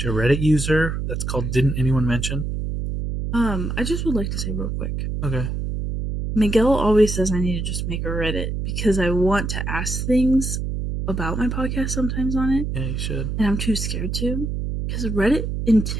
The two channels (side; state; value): right; noise; hum, 3 dB below the sound